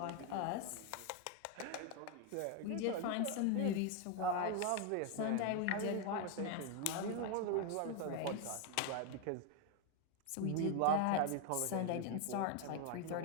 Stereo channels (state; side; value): different; both; correlation 0.01